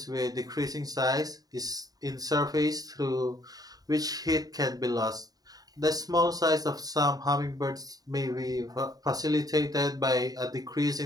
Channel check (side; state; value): left; late; 0.18 ms